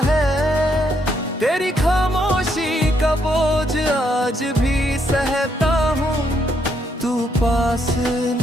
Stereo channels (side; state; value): both; normal; correlation 0.75